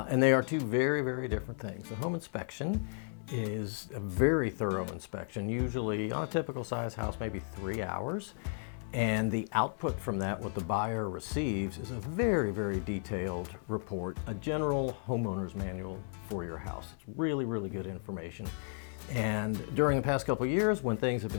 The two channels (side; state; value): right; silent; digital silence